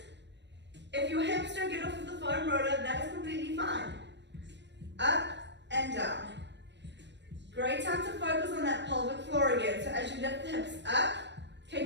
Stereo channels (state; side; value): late; left; 0.51 ms